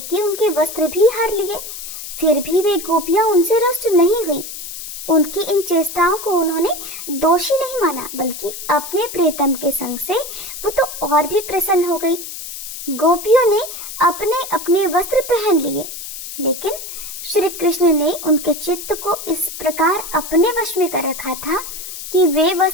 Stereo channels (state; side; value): noise; left; hiss, 9 dB below the sound